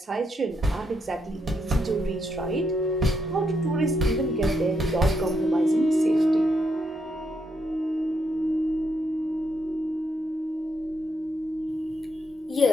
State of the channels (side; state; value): both; normal; correlation 0.78